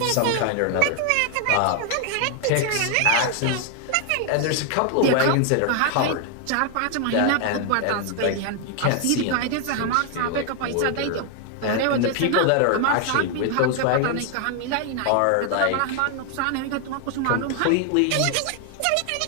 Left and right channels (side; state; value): both; different; correlation 0.00